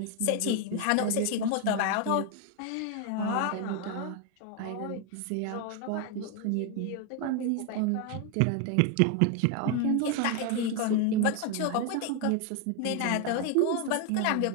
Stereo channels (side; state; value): both; different; correlation 0.01